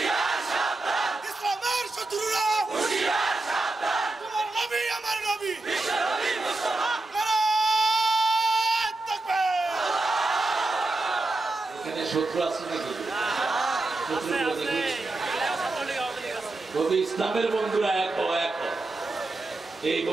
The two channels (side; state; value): left; quieter; 3.0 dB